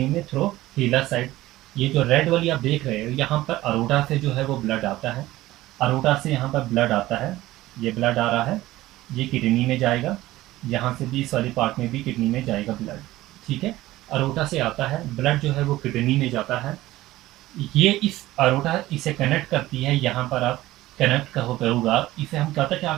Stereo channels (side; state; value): left; quieter; 16.6 dB